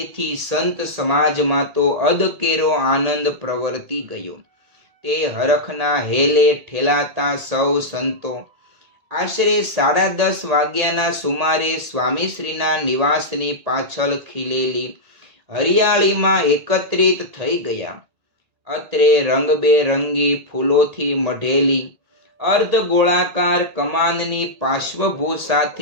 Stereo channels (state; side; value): late; left; 1.8 ms